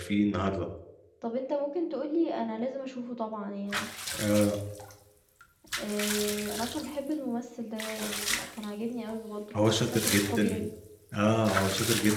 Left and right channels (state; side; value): identical; both; correlation 1.00